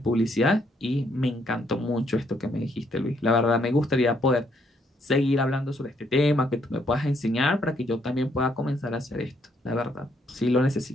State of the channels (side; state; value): both; normal; correlation 0.71